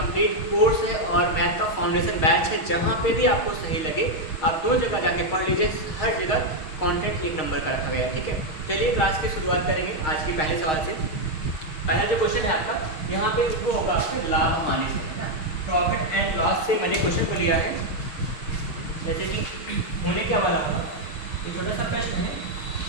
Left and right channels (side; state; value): right; late; 6.4 ms